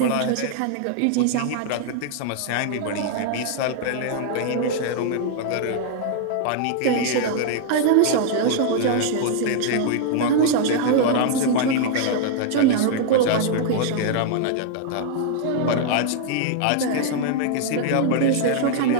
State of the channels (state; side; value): different; both; correlation -0.01